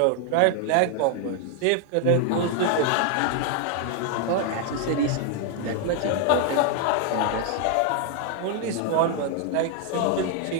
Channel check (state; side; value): different; both; correlation 0.00